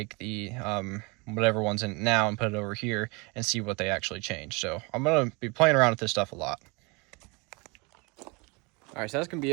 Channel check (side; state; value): left; quieter; 28.5 dB